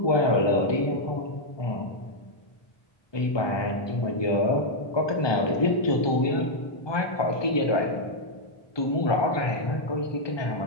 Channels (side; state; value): right; late; 1.2 ms